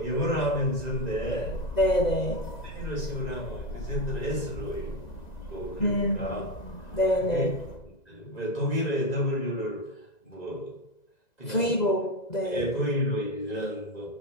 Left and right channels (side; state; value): right; late; 1.9 ms